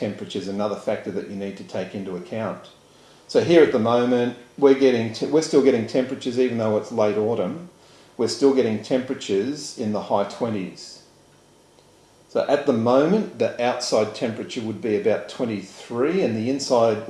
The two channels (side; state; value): both; identical; correlation 1.00